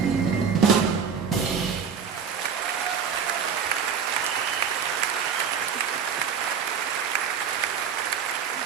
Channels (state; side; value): quieter; left; 7.0 dB